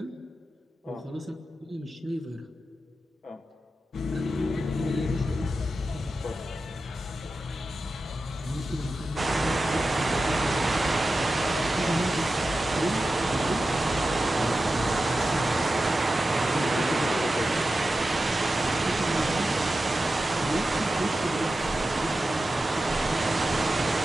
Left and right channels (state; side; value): normal; both; correlation 0.92